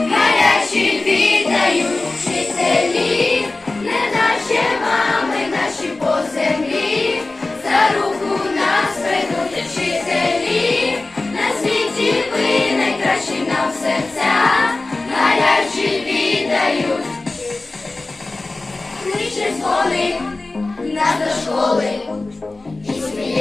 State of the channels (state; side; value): quieter; right; 3.2 dB